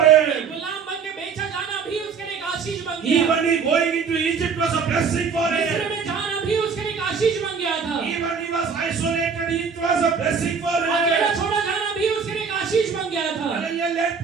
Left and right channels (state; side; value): quieter; left; 5.9 dB